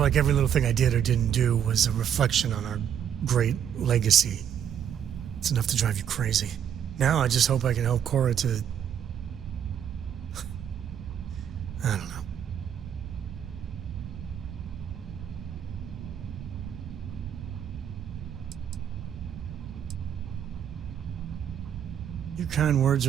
every little thing I did or didn't do was a reflection on our great legacy. It's enough to drive you crazy. Now I just hope I can help Cora to... I don't know. Your kind words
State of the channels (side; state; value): left; quieter; 9.0 dB